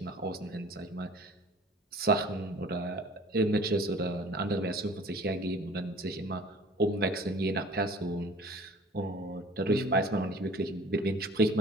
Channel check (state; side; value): normal; both; correlation 0.48